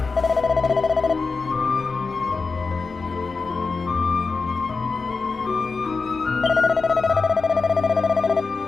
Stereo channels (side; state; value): right; quieter; 4.4 dB